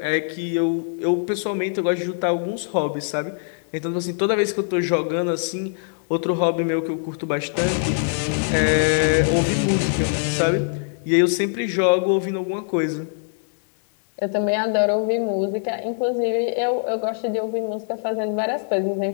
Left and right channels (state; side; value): silent; right; digital silence